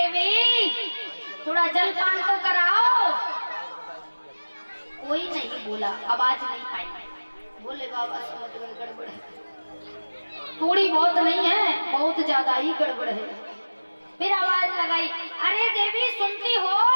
थोड़ा जलपान तो कराओ। कोई नहीं बोला, आवाज नहीं आई। भोले बाबा समझ गए गड़बड़ है, थोड़ी बहुत नहीं है, बहुत ज्यादा ही गड़बड़ है। फिर आवाज लगाई, अरे देवी सुनती हो,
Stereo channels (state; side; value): inverted; both; correlation -1.00